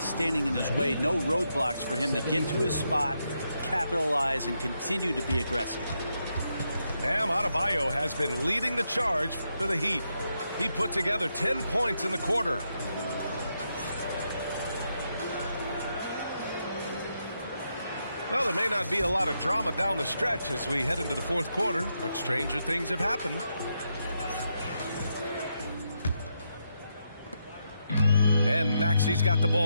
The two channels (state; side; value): inverted; both; correlation -0.82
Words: in his way, no roadblocks for him to get to his spot, capitalize, and continue to be aggressive. Bam Adebayo has been leading the charge for the Heat. He put together 10 points in the quarter. Well, there may not be a lot of drama down the stretch as we head into the fourth quarter, but stranger things have happened. And Maxi's got the